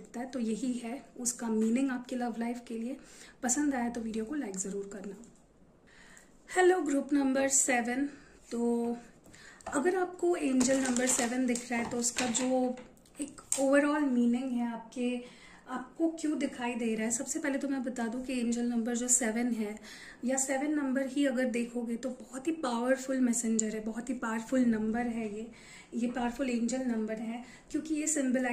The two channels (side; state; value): both; identical; correlation 1.00